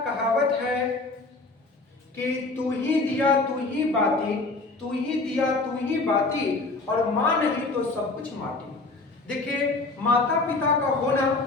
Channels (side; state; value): right; quieter; 3.4 dB